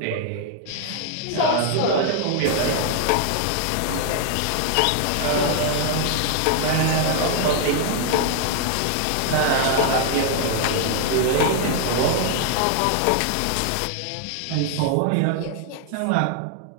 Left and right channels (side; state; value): both; different; correlation 0.00